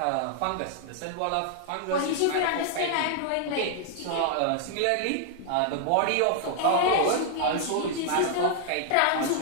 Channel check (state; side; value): different; both; correlation 0.00